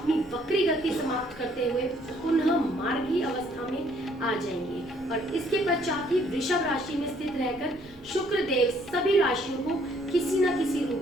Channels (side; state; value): right; noise; rumble, 25 dB below the sound